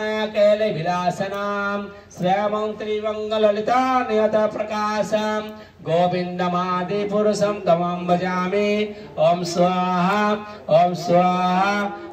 विलासनां श्यामं त्रिवङ्गललिता नियत प्रकाशं गोविन्दमादिपुरुषं तमं भजामि ओम स्वाहा ओम स्वाहा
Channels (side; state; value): both; identical; correlation 1.00